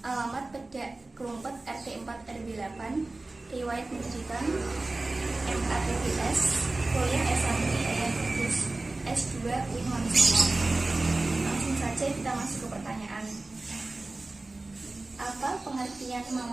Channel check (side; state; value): left; quieter; 3.1 dB